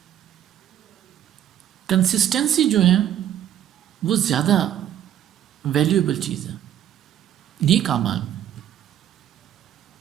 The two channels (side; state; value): left; quieter; 10.9 dB